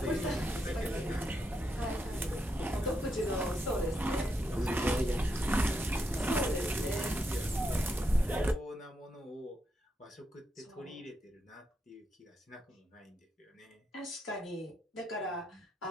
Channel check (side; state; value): both; normal; correlation 0.82